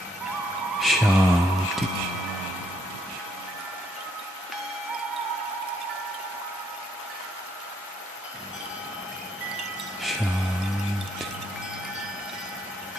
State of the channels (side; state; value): both; normal; correlation 0.71